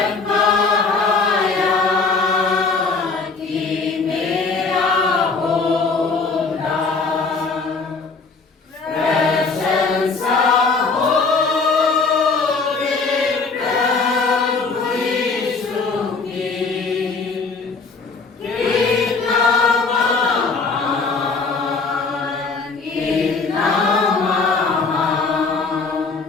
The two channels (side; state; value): right; quieter; 4.3 dB